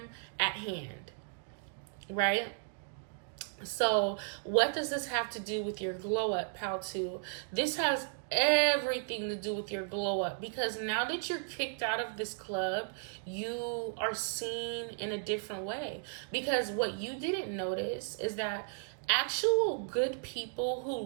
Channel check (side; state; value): left; silent; digital silence